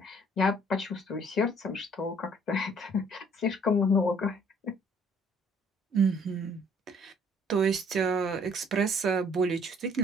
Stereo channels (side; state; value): both; normal; correlation 0.60